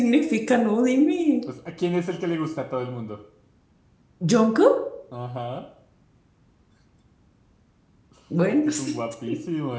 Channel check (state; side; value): identical; both; correlation 1.00